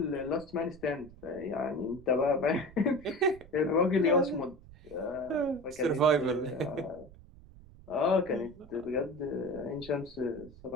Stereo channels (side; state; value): right; noise; rumble, 20 dB below the sound